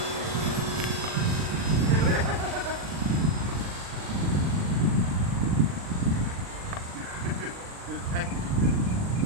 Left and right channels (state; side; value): late; left; 39 ms